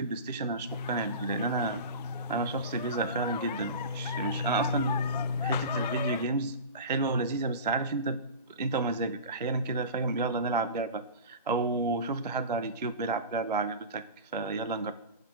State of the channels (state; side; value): inverted; both; correlation -0.32